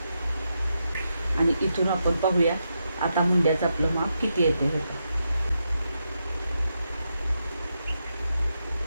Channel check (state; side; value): inverted; both; correlation -0.84